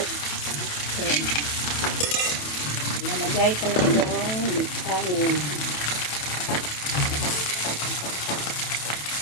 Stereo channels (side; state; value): right; late; 27 ms